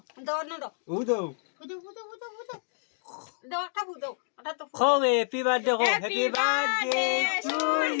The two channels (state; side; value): silent; right; digital silence